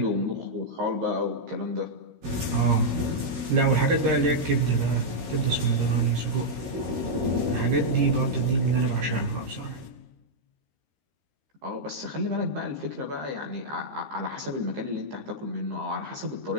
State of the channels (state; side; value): late; left; 13 ms